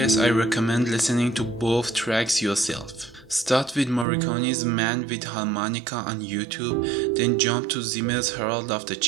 I recommend listening to both tracks yourself. Start with Morricone's Man with Harmonica on YouTube, then jump to Zimmer's Herald of the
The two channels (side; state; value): left; drops out; at 4.0 s